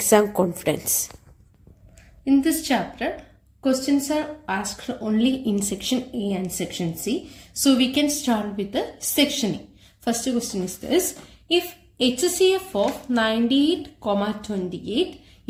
confidence. In this chapter, questions are asked only in section A and section C. So we can start with the section A. First question is this. If HCF of 98, 28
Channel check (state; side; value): identical; both; correlation 1.00